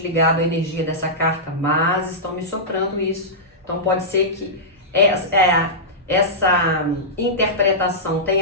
à energia dessa carta, mas estão me soprando isso. Então pode ser que essa interpretação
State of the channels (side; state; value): both; normal; correlation -0.13